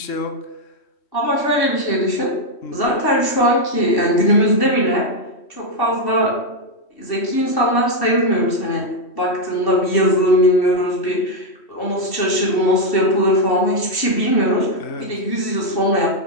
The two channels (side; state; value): right; late; 3.1 ms